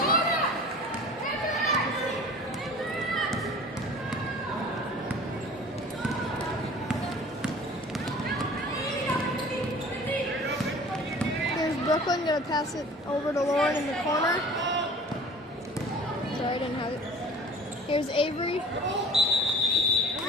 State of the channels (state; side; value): normal; both; correlation 0.44